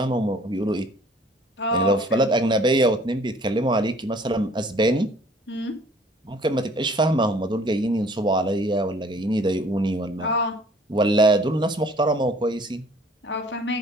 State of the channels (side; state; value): both; normal; correlation 0.55